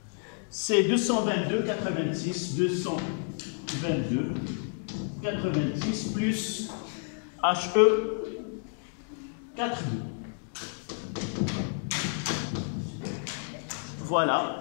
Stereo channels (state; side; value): silent; right; 58 dB below the other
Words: c'est 222 86 222 86 plus HE 4,2.